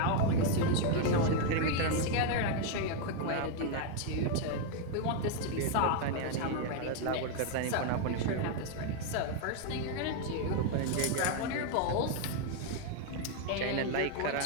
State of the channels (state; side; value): different; both; correlation 0.01